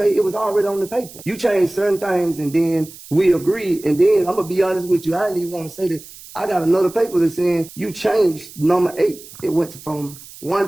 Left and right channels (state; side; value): noise; right; hiss, 18 dB below the sound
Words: it was already on the paper. You changed certain things and then we agreed. And then I'm going to be honest with you. I didn't even want to say that. I got another paper that's saying you changed number 8. It went from one